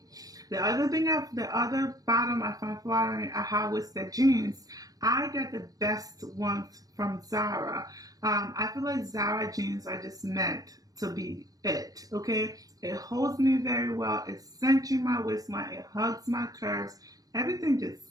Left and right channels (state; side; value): late; left; 0.17 ms